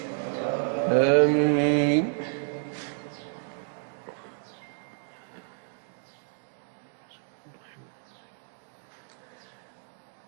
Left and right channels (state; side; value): silent; left; digital silence